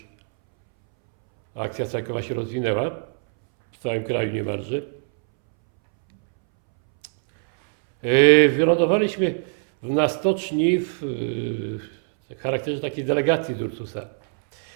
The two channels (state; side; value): silent; left; 64 dB below the other